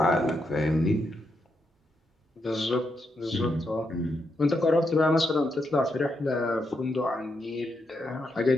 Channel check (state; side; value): normal; both; correlation 0.81